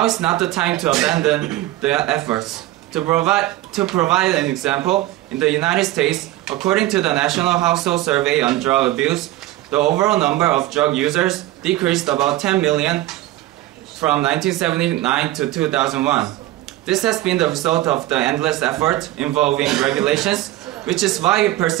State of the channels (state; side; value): quieter; left; 16.0 dB